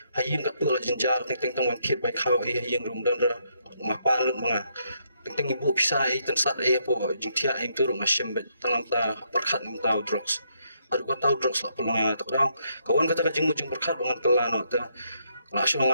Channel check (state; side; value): inverted; both; correlation -0.75